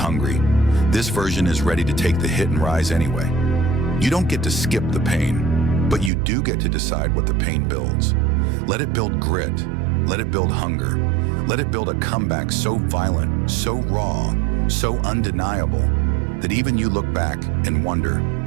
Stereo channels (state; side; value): drops out; left; at 6.1 s